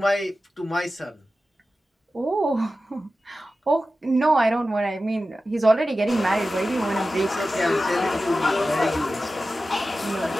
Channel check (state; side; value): normal; both; correlation 0.94